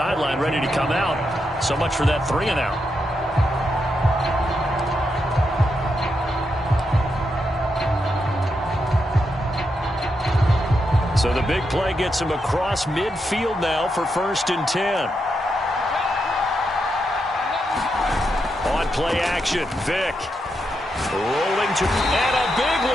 ready to come out. So much for that 3-and-out. So the big play gets him across midfield now for 1st and 10. On play action, Vic. Rolling to, and a big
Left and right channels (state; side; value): normal; both; correlation 0.83